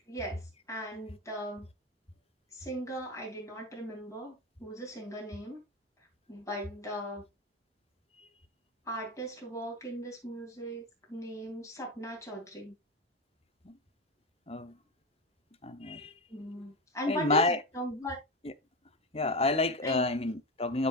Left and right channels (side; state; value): both; normal; correlation 0.18